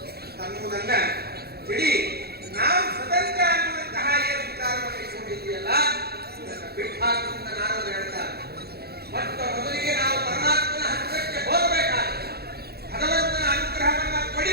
ಸಾಕು ಅಂತ ನಾರದರು ಹೇಳ್ತಾರೆ. ಮೊಟ್ಟ ಮೊದಲಿಗೆ ನಾವು ಪರಮಾತ್ಮನ ಹತ್ತಿರಕ್ಕೆ ಹೋಗಬೇಕಾದ್ರೆ, ಭಗವಂತನ ಅನುಗ್ರಹವನ್ನ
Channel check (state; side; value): late; left; 0.46 ms